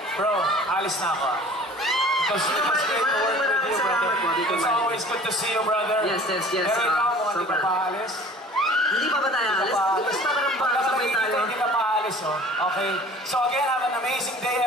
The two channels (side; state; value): both; normal; correlation 0.46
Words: Bro, alis na ako. It was great to work with you, brother. It's always good to see you, brother. Yes. Pero ikaw, hindi ka paalis. Hindi pa ba tayo alis? Basta ka ng sabay tayo. Hindi ka paalis, oh. Okay. So again, have an amazing day,